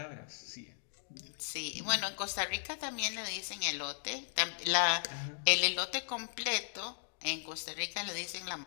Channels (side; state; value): right; silent; digital silence